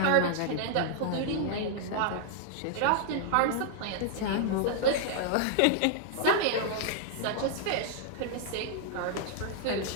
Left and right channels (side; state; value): both; different; correlation -0.01